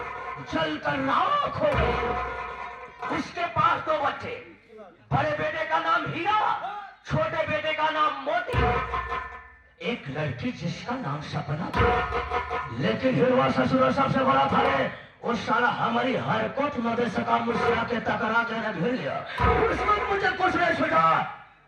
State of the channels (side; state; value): both; identical; correlation 1.00